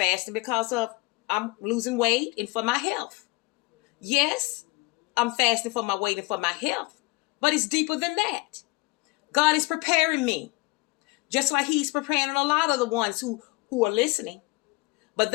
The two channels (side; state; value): right; quieter; 25.2 dB